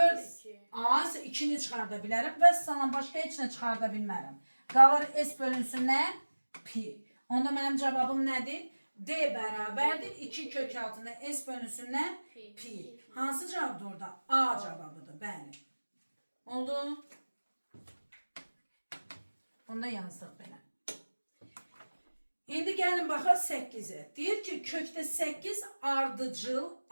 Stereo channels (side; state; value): both; inverted; correlation -1.00